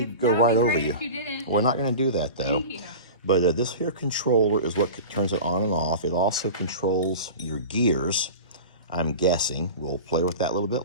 go right over you. If you didn't. We're not going to do that, though. Thank you. But this here controller is what turns it on and off. It also controls your gears, I'm guessing. We'll play with that a little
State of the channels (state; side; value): inverted; both; correlation -0.33